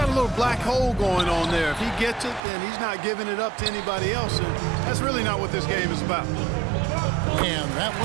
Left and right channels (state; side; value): drops out; left; at 2.4 s